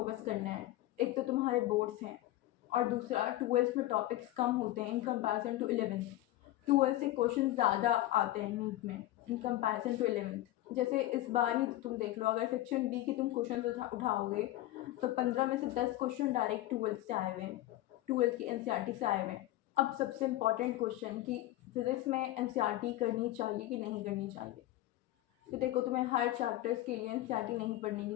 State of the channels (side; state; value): right; quieter; 15.7 dB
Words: करना है। एक तो तुम्हारे बोर्ड्स हैं, और दूसरा 12 में टॉपिक्स कम होते हैं इन कंपैरिजन टू 11। 12 से क्वेश्चन ज़्यादा आते हैं नीट में इन कंपैरिजन टू 11। जैसे इस बार ही तुम देख लो, अगर सेक्शन बी की तुम क्वेश्चन उठाओगे तो 15 में से 10 क्वेश्चन डायरेक्ट 12 से आए हुए हैं, 12 की एनसीईआरटी से आए हुए हैं। अब सबसे इम्पॉर्टेंट क्वेश्चन कि फिजिक्स में एनसीईआरटी करनी चाहिए कि नहीं करनी चाहिए। तो देखो, तुम्हें हर चैप्टर्स के लिए एनसीईआरटी नहीं पढ़ने की